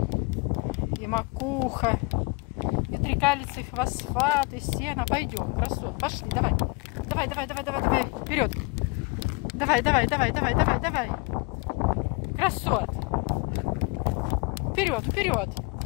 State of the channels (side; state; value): right; quieter; 27.5 dB